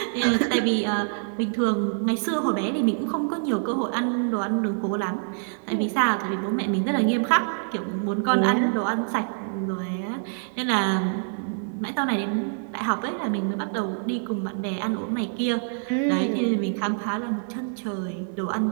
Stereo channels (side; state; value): left; silent; digital silence